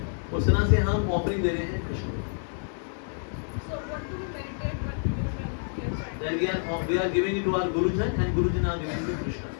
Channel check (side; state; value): right; silent; digital silence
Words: उस तरह से हम ऑफरिंग दे रहे हैं कृष्ण को। Then we are giving it to our Gurujan and Gurujan are giving it to Krishna.